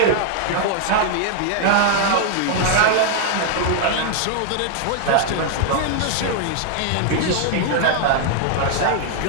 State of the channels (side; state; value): both; different; correlation 0.00